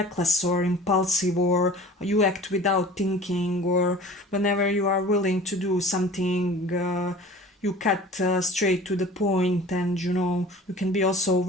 or impulsive, or you act without thinking, or whenever you are willing to do something. You cut straight to the point, and you can be also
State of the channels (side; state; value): both; normal; correlation 0.42